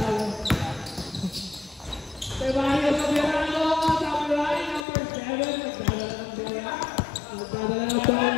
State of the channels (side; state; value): right; drops out; at 4.9 s